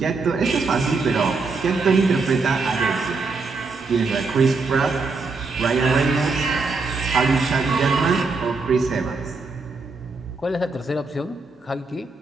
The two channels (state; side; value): quieter; left; 4.0 dB